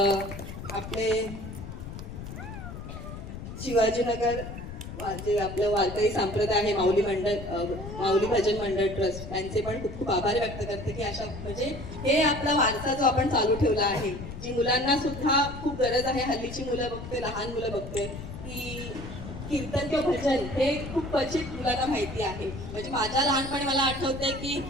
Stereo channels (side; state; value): left; noise; rumble, 10 dB below the sound